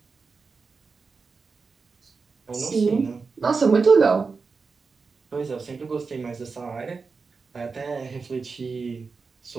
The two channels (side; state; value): left; quieter; 4.7 dB